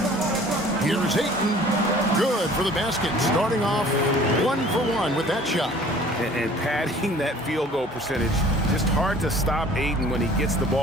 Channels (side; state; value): both; normal; correlation 0.50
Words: Here's Ayton. Good for the basket. Starting off 1 for 1 with that shot. And padding that field goal percentage. Just hard to stop Ayton when he gets the